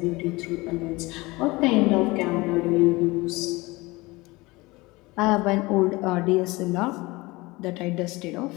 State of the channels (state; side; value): quieter; right; 22.3 dB